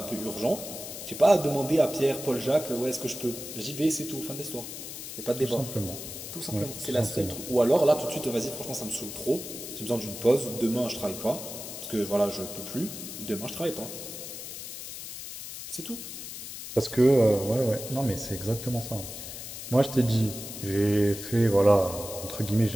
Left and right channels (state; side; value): noise; left; hiss, 9 dB below the sound